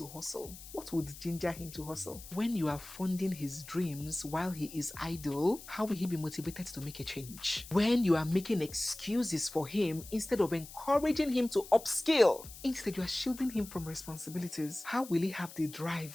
hustle? What would ginger him to hustle? When you are funding his dreams while he is idle, how will he be motivated to make a change? When you are making excuses for him instead of encouraging him to upskill, instead you are shielding him from responsibilities, how will he have the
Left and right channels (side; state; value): left; noise; hiss, 15 dB below the sound